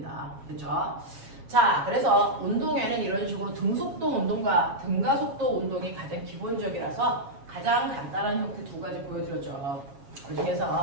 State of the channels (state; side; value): late; left; 7.3 ms